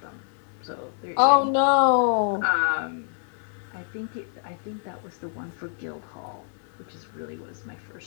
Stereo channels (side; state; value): right; silent; 60 dB below the other